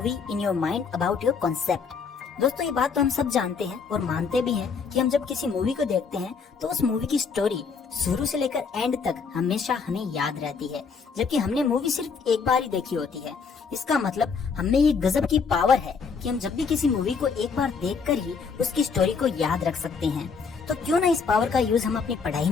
in your mind about your concept. दोस्तों, ये बात तो हम सब जानते हैं और मानते भी हैं कि हम जब किसी मूवी को देखते हैं तो उस मूवी की स्टोरी शुरू से लेकर एंड तक हमेशा हमें याद रहती है, जबकि हमने मूवी सिर्फ एक बार ही देखी होती है। इसका मतलब हमें ये गजब की पावर है कि हम जब भी किसी मूवी को एक बार देखकर ही उसकी स्टोरी को याद रख सकते हैं। तो क्यों ना इस पावर का यूज हम अपनी पढ़ाई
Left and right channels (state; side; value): quieter; right; 5.5 dB